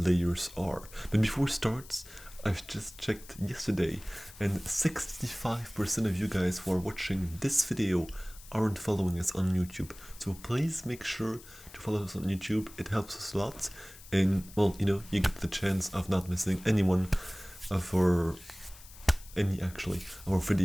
are. But before it starts, I've just checked yesterday, and 65% of you guys who are watching this video aren't following us on YouTube. So please make sure to follow us on YouTube. It helps us a lot, and well, you get the chance of not missing any one of our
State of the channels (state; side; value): noise; left; hiss, 19 dB below the sound